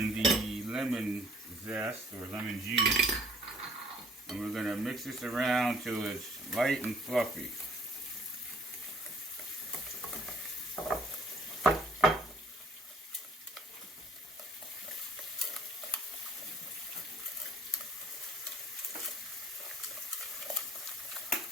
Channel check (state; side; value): normal; both; correlation 0.59